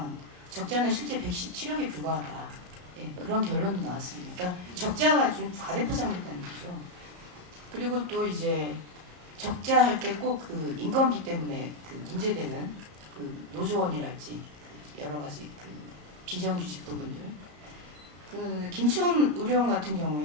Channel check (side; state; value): left; late; 34 ms